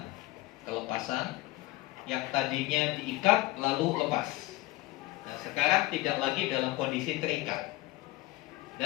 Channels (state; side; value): quieter; right; 19.2 dB